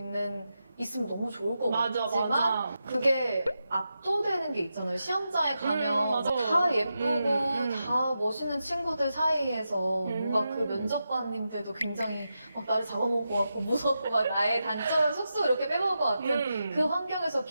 있으면 너무 좋을 것 같지만 그게 압도되는 게 있잖아요. 시험장에 가면 다 예쁘고 다 멋있는 친구들 사이에서 뭔가 그 면접관님들도 굉장히 막 나를 잡아먹을 것 같고 무섭고 막 나의 단점을 쏙쏙 이렇게 빼먹을 것 같은 그 환경에서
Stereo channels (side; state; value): both; inverted; correlation -0.88